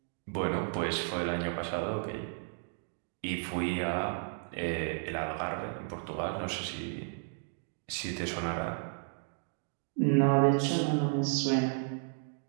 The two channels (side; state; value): left; silent; 56 dB below the other